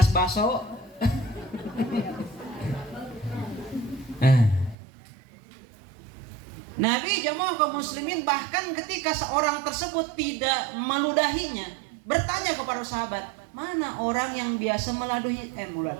baso. Nabi jamaah kaum muslimin bahkan ketika seorang tersebut tidak meludahinya, bertanya kepada sahabat, mana orang yang biasa meladuhi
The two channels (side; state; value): left; drops out; at 4.8 s